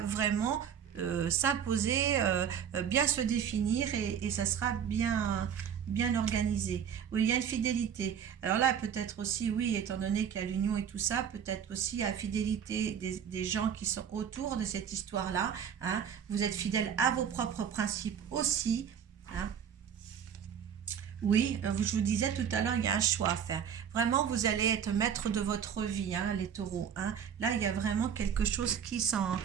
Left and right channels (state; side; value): quieter; left; 8.2 dB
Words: s'imposer, bien se définir et ça sera bien organisé. Oui, il y a une fidélité. Alors là, peut-être aussi, oui, étant donné qu'il y a l'union et tout ça, peut-être aussi la fidélité des gens qui sont autour de cette histoire-là, hein. Vous êtes fidèle à vos propres principes aussi, hein. Oui, je vous disais tout à l'heure, il y a un choix à faire. Vraiment, vous allez être maître de votre vie, hein, les taureaux, hein. Là, il y a vraiment quelque chose qui